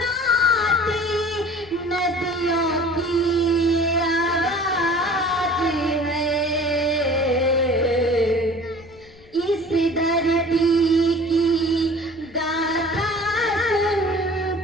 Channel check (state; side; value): noise; left; rumble, 25 dB below the sound